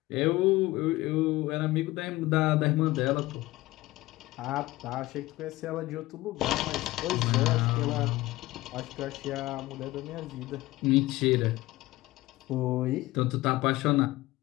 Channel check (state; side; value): quieter; right; 18.5 dB